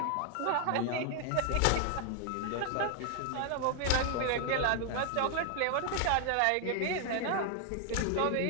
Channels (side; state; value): both; different; correlation 0.00